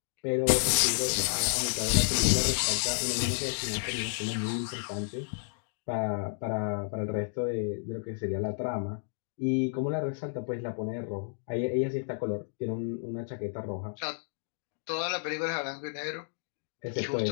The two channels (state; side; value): silent; right; digital silence